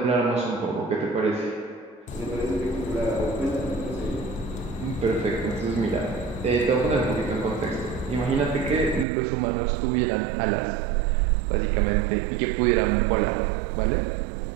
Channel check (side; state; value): left; drops out; at 9.1 s